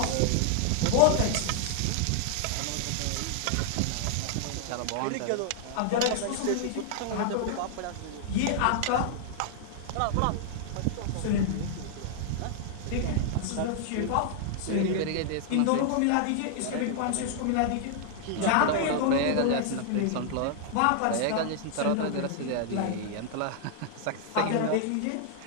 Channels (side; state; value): both; different; correlation 0.00